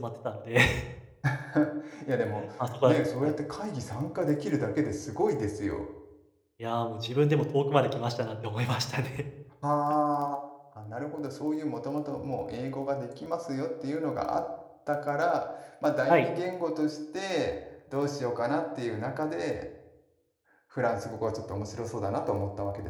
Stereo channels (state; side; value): identical; both; correlation 1.00